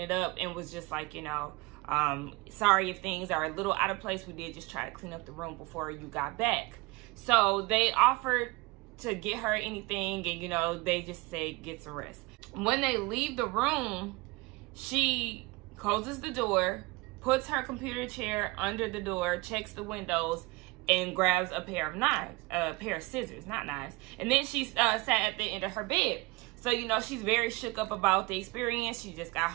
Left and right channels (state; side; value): quieter; left; 24.1 dB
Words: up and was just like, you know, sorry if things are a little out of place. We did just try to clean up the room before you got back. So they offered to get her anything, and, you know, they just say get some rest. When they leave the room, she closes the door, puts her computer chair under the door, checks the windows, and grabs a pair of knives, a pair of scissors, not knives. And then she sat at the end of her bed. So, you know, she's very shook up about the experience. She just got